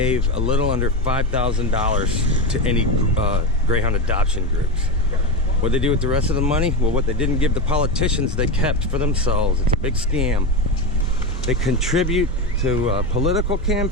a little under $5,000 to any Greyhound adoption groups. What they do with the rest of the money? Well, what they didn't give the politicians, they kept for themselves. It's a big scam. They contribute to political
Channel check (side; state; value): both; normal; correlation 0.16